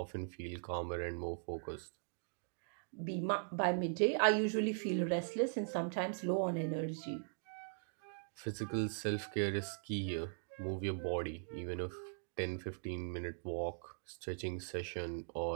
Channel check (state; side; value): silent; left; digital silence